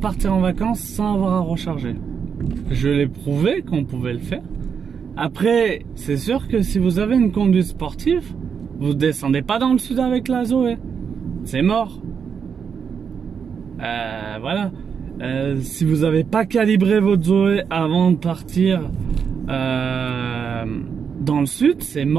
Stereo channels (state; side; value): quieter; left; 6.7 dB